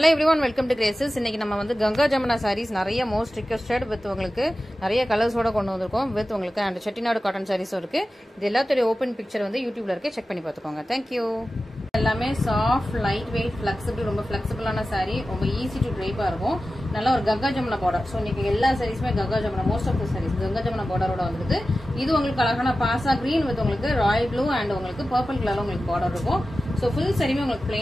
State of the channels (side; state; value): both; normal; correlation 0.94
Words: everyone, welcome to Graces. இன்னைக்கு நம்ம வந்து கங்கா ஜமுனா sarees நிறைய most requested with உங்களுக்கு நிறைய கலர்ஸ் ஓட கொண்டு வந்திருக்கோம் with உங்களுக்கு and செட்டிநாடு காட்டன் sarees இருக்கு. இது எல்லாத்தோட ஓபன் பிக்சர் வந்து YouTubeல இருக்கு, செக் பண்ணி பாத்துக்கோங்க. Thank you. எல்லாமே சாஃப்ட் லைட் வெயிட் ஃபிளெக்சிபிள் ரொம்ப ஃபிளெக்சிபிளான saree, ரொம்ப ஈஸி டு ட்ரைப்பா இருக்கும். நல்ல ஒரு கங்கா ஜமுனா border. சோ இன்னைக்கு எல்லா sareesமே Ganga Jamuna, most of the sarees Ganga Jamuna borderோட வந்திருக்கு. இது உங்களுக்கு அழகான பாசா green with உங்களுக்கு ராயல் ப்ளூ and உங்களுக்கு purple கலர்ல உங்களுக்கு border இருக்கும். சோ ஃபுல் sareeமே உங்களுக்கு